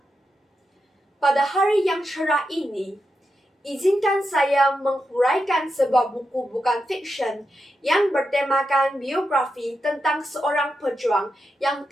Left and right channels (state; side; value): normal; both; correlation 0.87